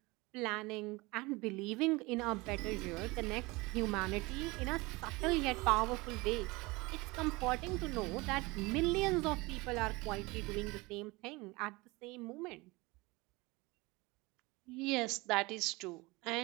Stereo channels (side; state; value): left; quieter; 23.6 dB